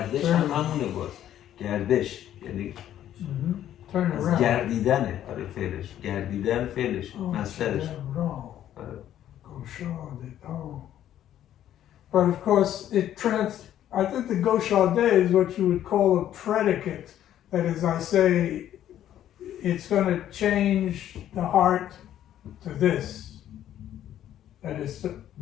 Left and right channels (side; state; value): right; quieter; 11.5 dB